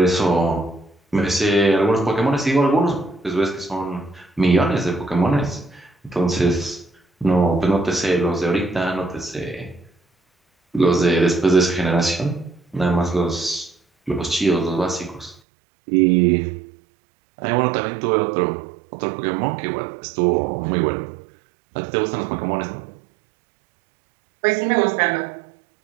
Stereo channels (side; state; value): left; drops out; at 15.4 s